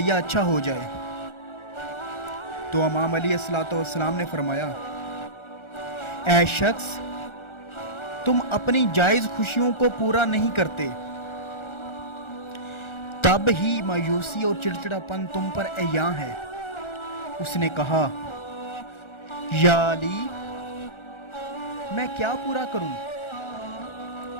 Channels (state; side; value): late; right; 1.4 ms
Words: اچھا ہو جائے؟ تو امام علی الصلوۃ والسلام نے فرمایا، اے شخص، تم اپنی جائز خوشیوں کو پورا نہیں کرتے، تب ہی مایوسی اور چڑچڑاپن تم پر عیاں ہے۔ اس نے کہا، یا علی، میں کیا پورا کروں؟